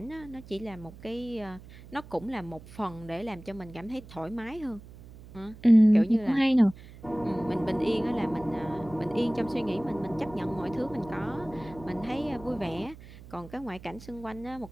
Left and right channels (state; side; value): noise; right; hum, 18 dB below the sound